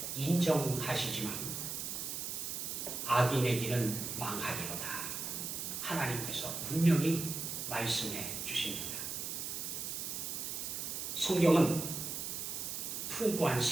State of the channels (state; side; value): noise; right; hiss, 4 dB below the sound